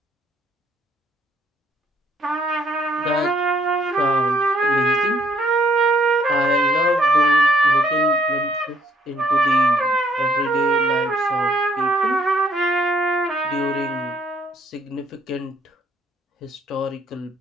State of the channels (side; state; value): both; normal; correlation 0.66